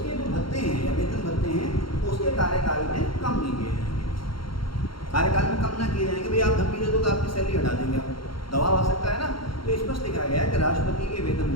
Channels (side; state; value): right; late; 0.73 ms